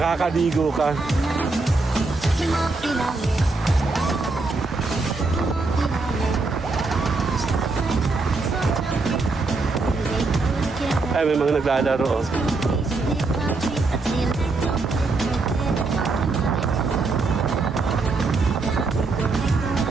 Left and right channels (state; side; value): quieter; left; 3.7 dB